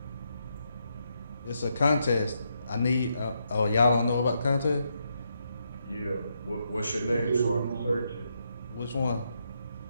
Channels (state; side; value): inverted; both; correlation -0.80